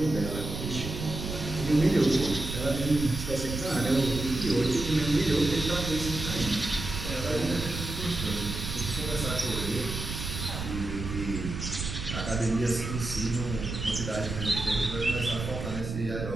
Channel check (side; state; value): right; noise; rumble, 6 dB below the sound